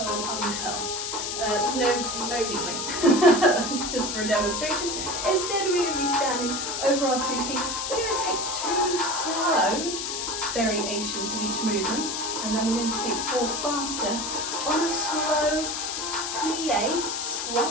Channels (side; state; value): left; noise; hiss, 3 dB below the sound